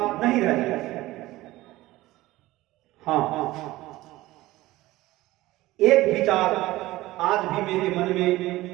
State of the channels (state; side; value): quieter; left; 17.6 dB